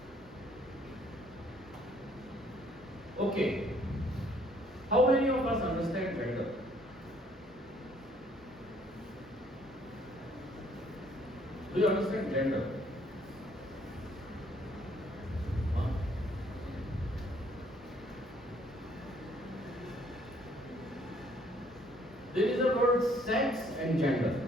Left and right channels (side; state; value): both; normal; correlation 0.63